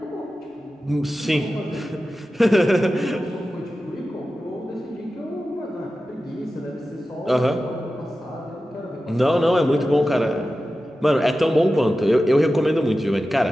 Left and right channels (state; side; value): normal; both; correlation 0.93